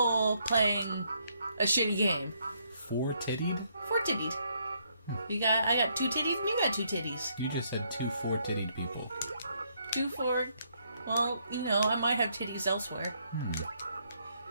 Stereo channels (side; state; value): both; inverted; correlation -0.72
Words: playing a shitty game. Four-tittied? Four-tittied. I got two titties and you got two titties. You just said two four-tittied people. Well, you know, I might have titties elsewhere.